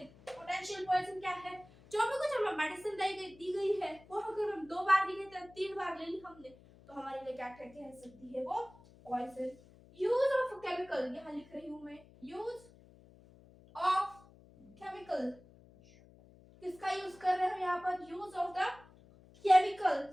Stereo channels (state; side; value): noise; left; hum, 24 dB below the sound